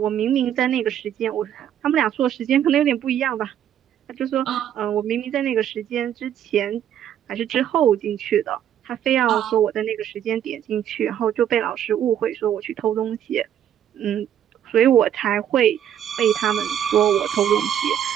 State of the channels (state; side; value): quieter; left; 10.1 dB